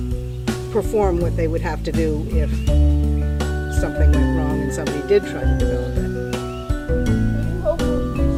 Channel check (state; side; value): identical; both; correlation 1.00